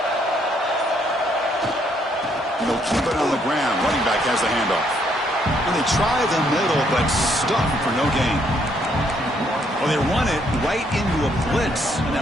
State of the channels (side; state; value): both; normal; correlation 0.70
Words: They'll keep it on the ground. Running back has the handoff. And they try the middle, but stuffed for no gain. Well, they run it right into a blitz, and